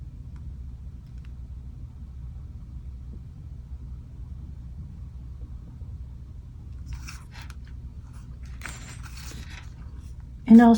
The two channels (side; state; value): both; identical; correlation 1.00